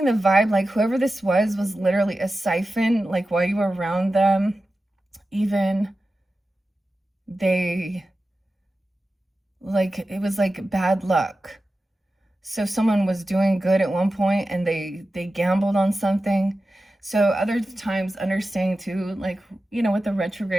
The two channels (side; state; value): both; normal; correlation 0.93